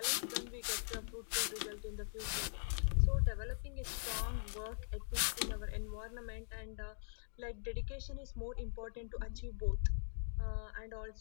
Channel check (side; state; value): right; silent; digital silence